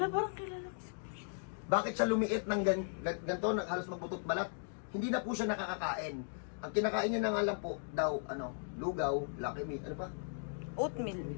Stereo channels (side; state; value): right; silent; digital silence